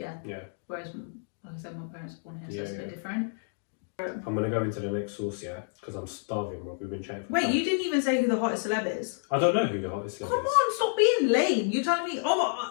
Whereas, like I said, my parents were born here, so it's a bit different. I'm going to go into the next source, because I'm starving. We've been chatting for Wait, time. you didn't even say who the hottest celeb is. I don't know who the hottest celeb is. Come on, stop being lame. You're telling me,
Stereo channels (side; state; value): right; silent; digital silence